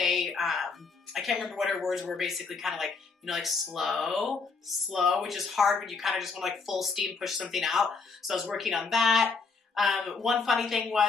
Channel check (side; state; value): right; quieter; 4.6 dB